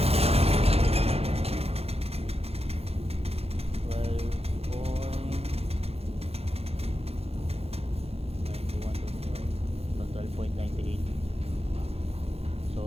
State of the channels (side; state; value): left; late; 0.29 ms